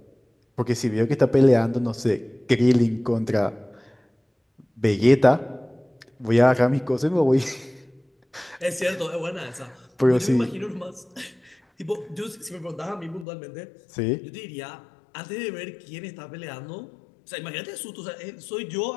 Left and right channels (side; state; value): right; drops out; at 13.2 s